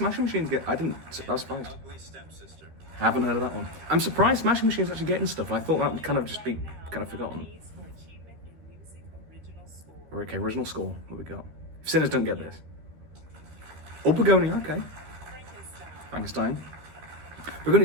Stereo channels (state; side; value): late; left; 13 ms